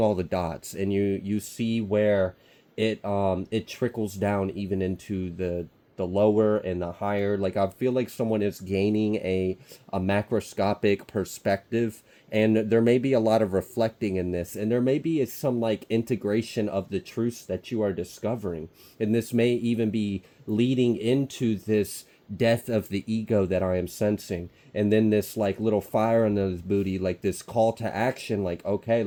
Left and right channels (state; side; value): identical; both; correlation 1.00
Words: all the dots, and you see where it trickles down even into the lower and the higher. Like I feel like someone is gaining a macroscopic perspective, and there may be a lot of reflecting in this, and there may be some like integration of the truths that you are discovering, and this may even be leading into this death of the ego that I am sensing, and then this like little fire in the booty, like this call to action, like okay,